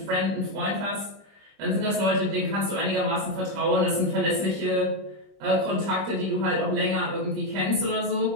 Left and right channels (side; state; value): left; late; 25 ms